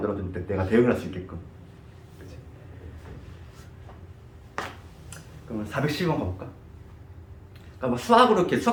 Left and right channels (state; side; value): identical; both; correlation 1.00